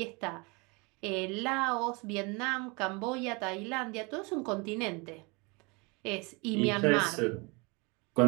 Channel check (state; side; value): quieter; left; 28.7 dB